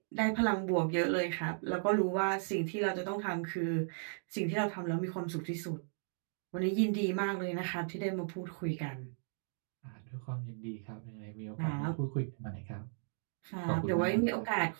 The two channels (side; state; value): left; silent; digital silence